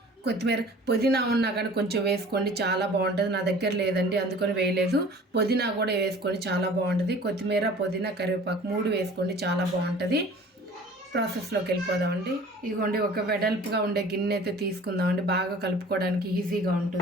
కొత్తిమీర, పుదీనా ఉన్నా కానీ కొంచెం వేసుకోండి, చాలా బాగుంటుంది. నా దగ్గర లేదండి, అందుకని వేయలేదు. పుదీనా కూడా వేసుకొని చాలా బాగుంటుంది. కొత్తిమీర, పుదీనా, కరివేపాకు 3 వేసుకోండి, చాలా బాగుంటుంది. ప్రాసెస్లోకి వెళ్ళిపోదామండి. ఇదిగోండి ఒక వెడల్పుగా ఉండే గిన్నె అయితే తీసుకుందామండి, బాగా కలుపుకోవడానికి ఈజీగా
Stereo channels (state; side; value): normal; both; correlation 0.46